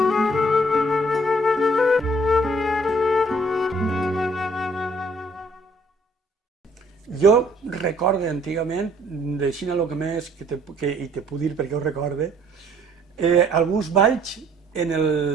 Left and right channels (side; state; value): both; normal; correlation 0.61